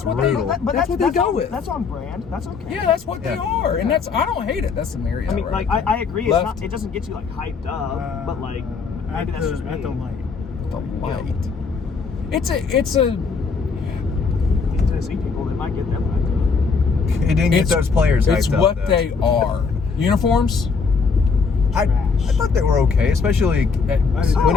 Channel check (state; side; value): quieter; right; 5.1 dB